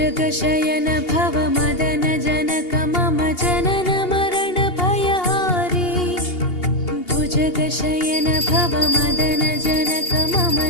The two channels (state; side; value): late; right; 2.8 ms